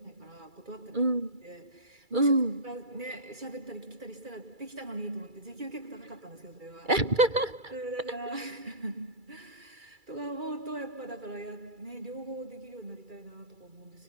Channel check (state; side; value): late; left; 2.3 ms